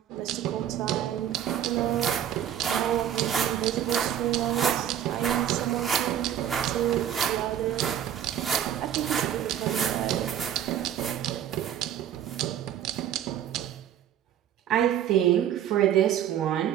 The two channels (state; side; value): quieter; left; 10.3 dB